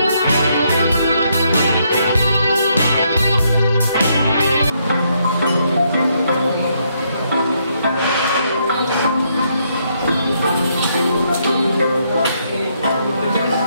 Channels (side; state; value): both; inverted; correlation -0.74